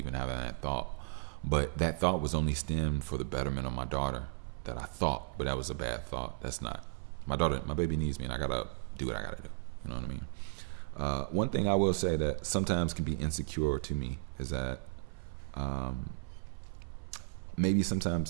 having that thought. But that thought was only stemmed for the betterment of my daughter. That I thought, but that was a bad thought. That's not. My daughter, my baby needs me, and I gotta do what I gotta do. You know what I mean? One thing I will say that sometimes can be insecure to me is that maybe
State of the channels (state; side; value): silent; left; 54 dB below the other